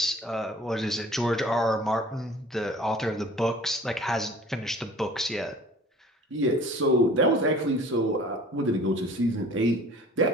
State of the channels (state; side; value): normal; both; correlation 0.47